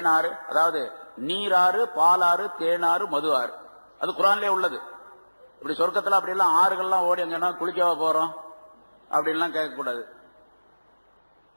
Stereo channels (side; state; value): both; inverted; correlation -1.00